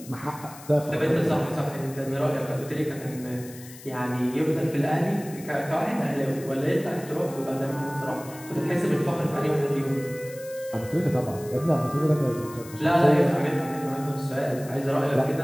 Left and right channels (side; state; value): left; noise; hiss, 18 dB below the sound